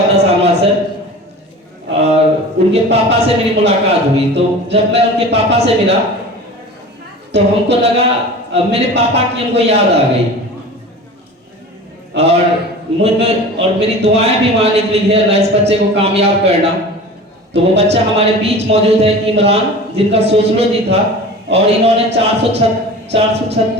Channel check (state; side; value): normal; both; correlation 0.37